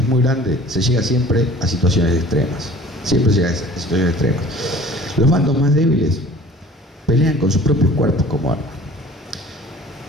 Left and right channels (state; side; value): normal; both; correlation 0.47